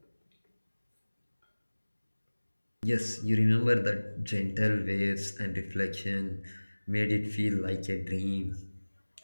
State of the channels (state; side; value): inverted; both; correlation -1.00